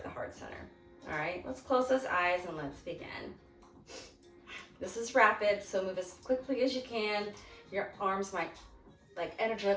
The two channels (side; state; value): both; identical; correlation 1.00